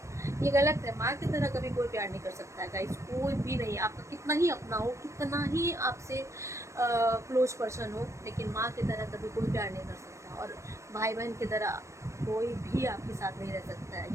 ये गलत है। माँ की तरह कभी कोई प्यार नहीं कर सकता है गाइस, कोई भी नहीं। आपका कितना ही अपना हो, कितना ही आपसे क्लोज पर्सन हो, लेकिन माँ की तरह कभी कोई प्यार नहीं कर सकता। और भाई बहन की तरह कोई भी आपके साथ नहीं रह सकता है।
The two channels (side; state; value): left; late; 0.14 ms